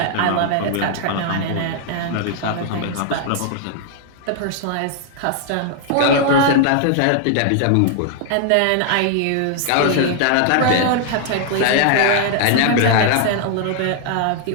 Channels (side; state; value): both; different; correlation 0.00